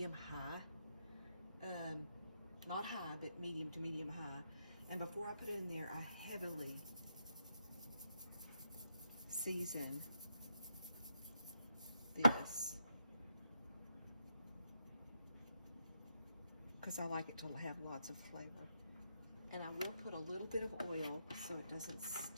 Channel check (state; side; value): inverted; both; correlation -0.82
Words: high. Not high, but medium to medium high. And before I put it in there, I heavily season this, because I like it to have lots of flavor. And I will put a little bit of oil so it doesn't